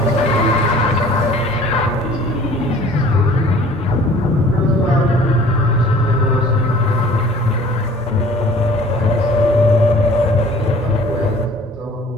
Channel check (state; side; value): normal; both; correlation 0.50